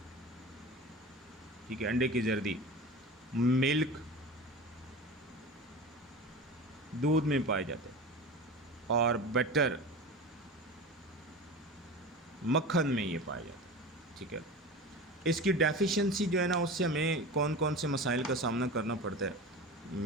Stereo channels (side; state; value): both; normal; correlation 0.31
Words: ठीक है, अंडे की जर्दी, मिल्क, दूध में पाए जाते हैं, और बटर, मक्खन में ये पाया जाता है। ठीक है, इसकी डेफिशिएंसी जो है ना, उससे हमें कौन कौन से मसाइल का सामना करना पड़ता है,